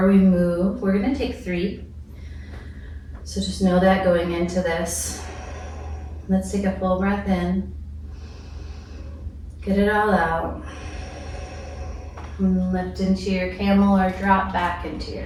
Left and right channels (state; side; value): identical; both; correlation 1.00